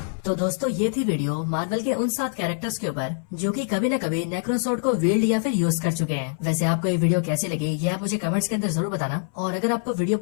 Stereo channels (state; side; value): silent; right; 60 dB below the other